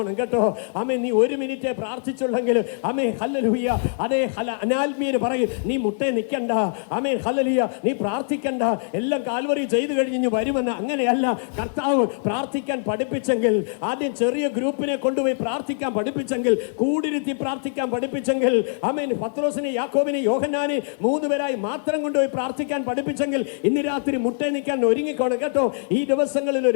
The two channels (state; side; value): silent; right; digital silence